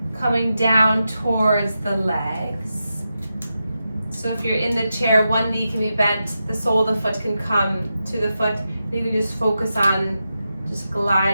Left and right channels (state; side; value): inverted; both; correlation -0.89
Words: coming down towards the legs. So if you're in the chair, one knee can be bent, the sole of the foot can come to the foot. You can just focus on just